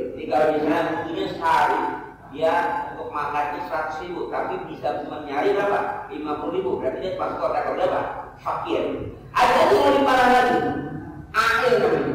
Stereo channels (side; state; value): both; identical; correlation 1.00